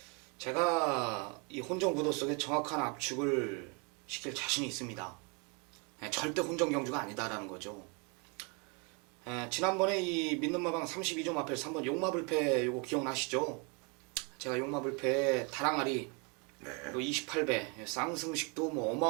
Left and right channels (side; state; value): left; quieter; 33.1 dB